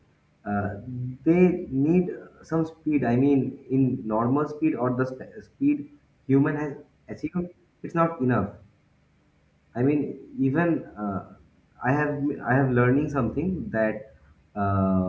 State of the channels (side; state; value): both; identical; correlation 1.00